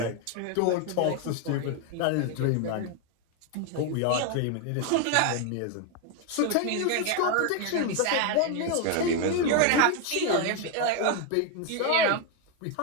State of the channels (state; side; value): different; both; correlation 0.01